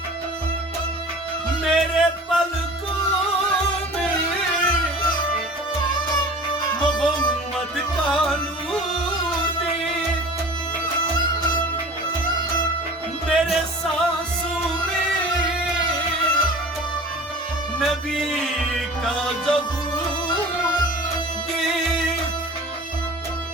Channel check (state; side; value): normal; both; correlation 0.41